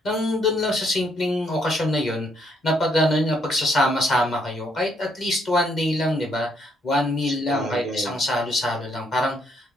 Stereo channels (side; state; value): both; normal; correlation 0.72